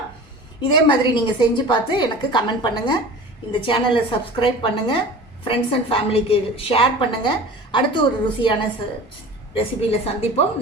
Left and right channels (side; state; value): both; normal; correlation 0.38